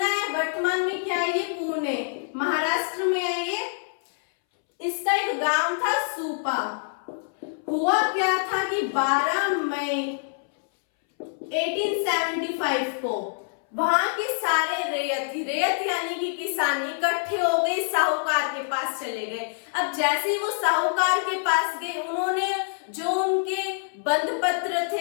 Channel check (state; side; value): silent; right; 61 dB below the other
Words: है वर्तमान में क्या है, ये पुणे महाराष्ट्र में है। ये इसका एक गांव था सूपा। हुआ क्या था कि 12 मई 1875 को वहां के सारे रेत यानी कि किसान इकट्ठे हो गए, साहूकार के पास चले गए। अब जैसे ही वो साहूकार के पास गए, उन्होंने जो उनके बंध पत्र